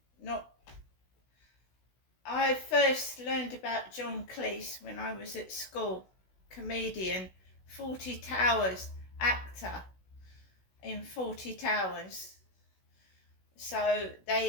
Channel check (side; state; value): right; late; 16 ms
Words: first learned about John Cleese when I was at school. Comedian, Fawlty Towers, actor in Fawlty Towers. So